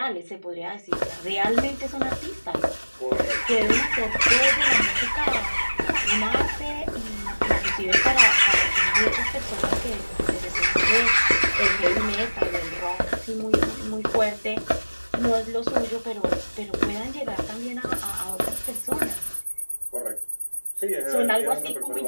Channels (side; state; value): both; inverted; correlation -1.00